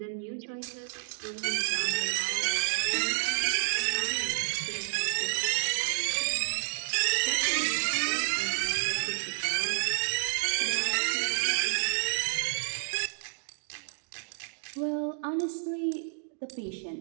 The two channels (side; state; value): left; silent; digital silence